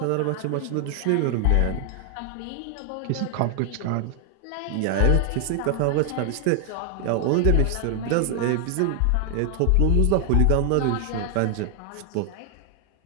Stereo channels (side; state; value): both; different; correlation 0.00